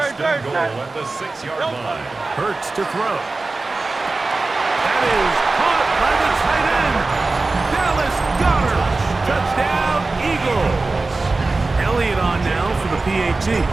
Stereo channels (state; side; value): quieter; left; 3.5 dB